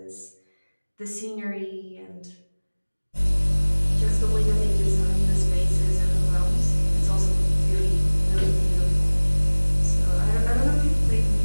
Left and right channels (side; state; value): both; inverted; correlation -1.00